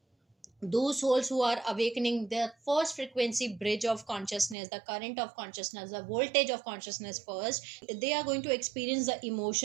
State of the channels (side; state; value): left; drops out; at 4.5 s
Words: those souls who are awakening the first frequency bridge of consciousness, the current of consciousness, the voltage of consciousness first, they are going to experience the